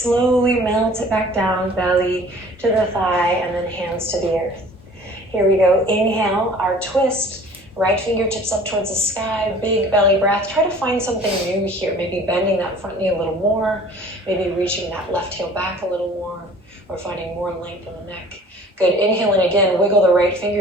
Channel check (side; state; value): both; normal; correlation 0.49